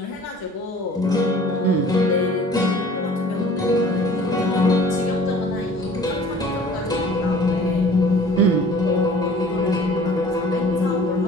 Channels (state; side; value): normal; both; correlation 0.49